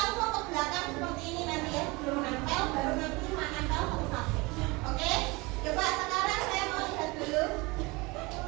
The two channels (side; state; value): left; quieter; 24.8 dB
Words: ke belakang seperti ini nanti ya, sebelum nempel, baru nanti menempel satu-satu. Oke? Coba sekarang saya mau lihat dulu.